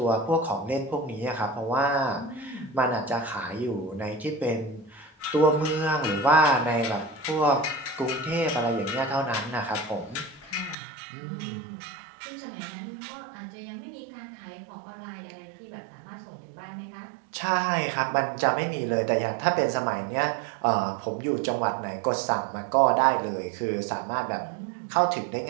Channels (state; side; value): drops out; left; at 10.8 s